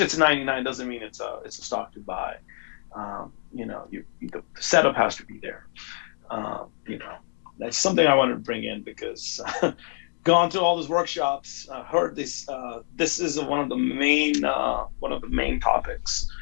99 doesn't mean it's a stock to buy. The setup has to be there. That's something I wanted to bring in, because gone to all those workshops, heard this. This is one of the main topics.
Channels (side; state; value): right; silent; 61 dB below the other